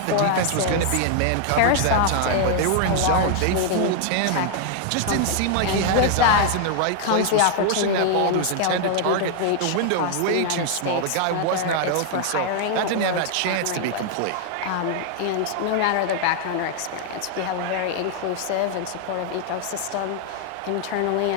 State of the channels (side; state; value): both; different; correlation 0.00